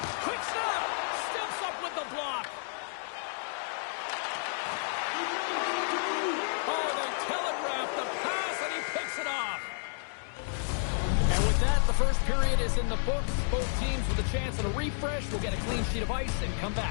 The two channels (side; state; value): right; silent; digital silence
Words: Quick snap! Steps up with the block. Oh, they telegraph the pass, and he picks it off. And with that, the first period is in the books. Both teams with a chance at a refresh will get a clean sheet of ice and come